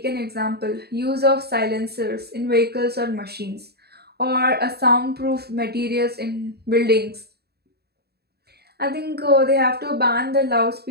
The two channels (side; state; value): left; late; 0.47 ms